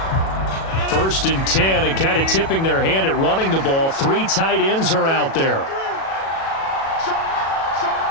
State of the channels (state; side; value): late; right; 37 ms